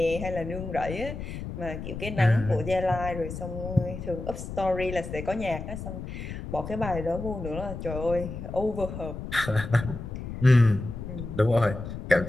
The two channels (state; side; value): noise; left; rumble, 8 dB below the sound